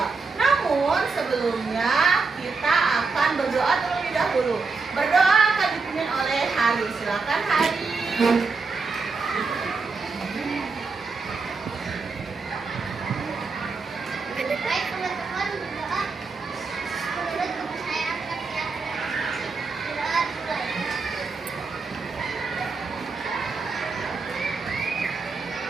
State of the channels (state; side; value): quieter; left; 4.4 dB